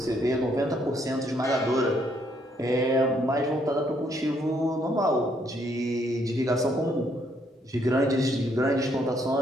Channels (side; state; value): both; normal; correlation 0.70